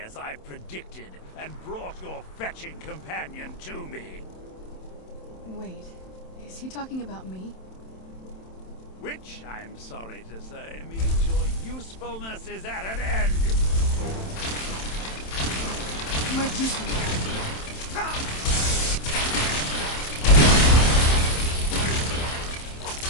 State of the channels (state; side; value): late; right; 27 ms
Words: I predicted and brought your fetching companion to me. Wait, is he talking about me? Which, I'm sorry to say, means your usefulness is at an end. Where'd you come from?